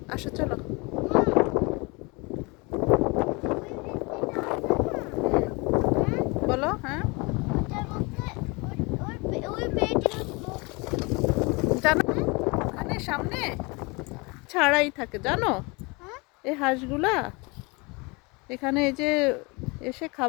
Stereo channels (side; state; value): right; quieter; 27.5 dB